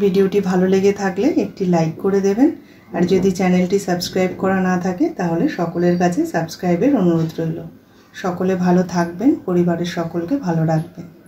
ভিডিওটি ভালো লেগে থাকলে একটি লাইক করে দেবেন, আর যদি চ্যানেলটি সাবস্ক্রাইব করা না থাকে তাহলে সকলের কাছে সাবস্ক্রাইবের অনুরোধ রইল। সকলে ভালো থাকবেন, পরিবারের সকলকে ভালো রাখবেন।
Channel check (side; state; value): both; identical; correlation 1.00